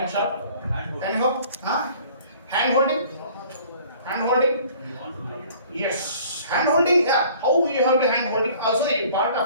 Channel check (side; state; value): both; inverted; correlation -0.52